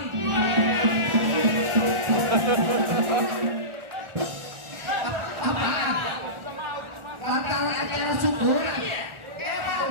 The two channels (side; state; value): left; late; 1.4 ms